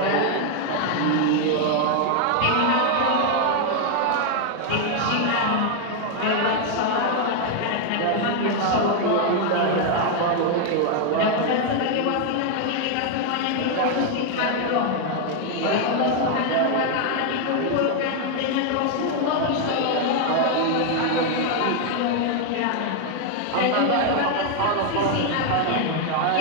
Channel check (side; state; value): both; different; correlation 0.00